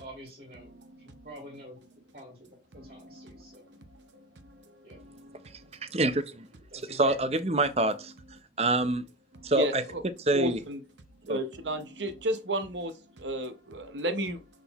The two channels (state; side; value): normal; both; correlation 0.20